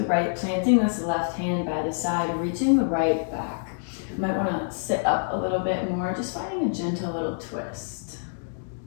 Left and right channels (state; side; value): silent; right; digital silence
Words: right, planting this left hand by the side, reaching the right back. You might want to sit up a little bit more, just finding a gentle little twist.